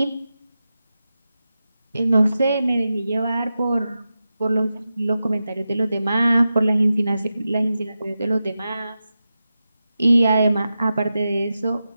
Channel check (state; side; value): inverted; both; correlation -0.91